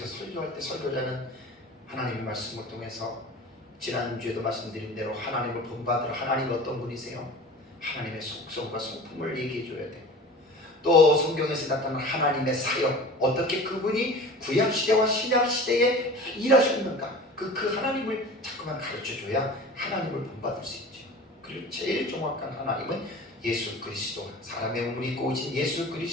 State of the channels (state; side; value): normal; both; correlation 0.38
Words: 설교할 때 설교자는 하나님의 말씀을 통해서 지난주에도 말씀드린 대로 하나님을 본받으러, 하나님 어떤 분이세요? 하나님의 속성과 성품을 얘기해 줘야 돼요. 또 성경에서 나타난 하나님의 사역, 어떻게 그분이 구약시대와 신약시대에 일하셨는가, 그 하나님을 자꾸만 가르쳐줘야 하나님을 본받을 수 있죠. 그리고 제일 정확한 하나님은 예수 그리스도, 사람의 몸을 입고 오신 예수